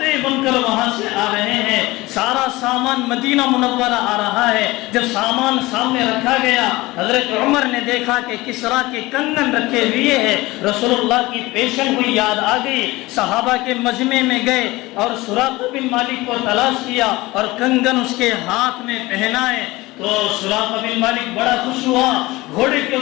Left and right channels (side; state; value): right; quieter; 20.3 dB